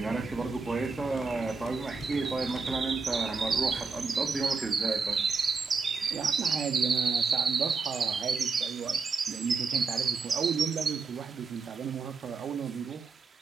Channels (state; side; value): quieter; left; 4.6 dB